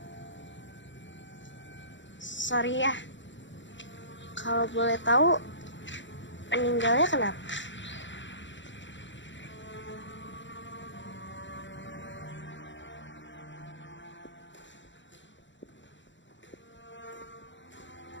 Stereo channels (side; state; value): right; late; 0.54 ms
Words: Sorry ya. Kalau boleh tahu, meninggalnya kenapa?